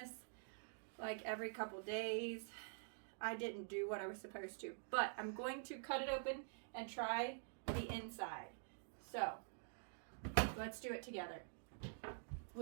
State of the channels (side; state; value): left; silent; digital silence